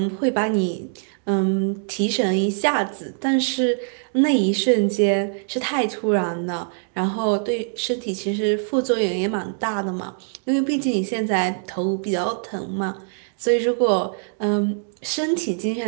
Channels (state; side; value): silent; left; digital silence